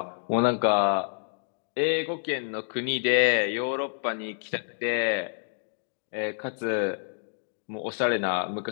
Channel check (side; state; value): right; silent; digital silence